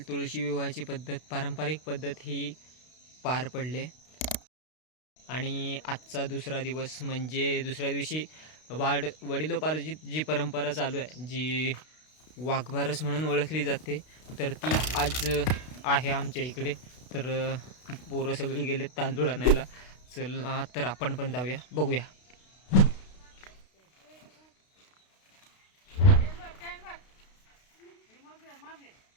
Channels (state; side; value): late; right; 32 ms